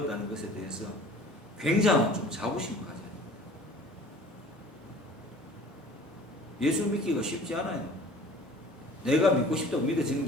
것에 대해서 굉장한 좀 자부심을 가져요. 예수 믿기가 쉽지 않아요. 내가 믿고 싶다고 믿어지는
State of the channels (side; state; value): both; normal; correlation 0.47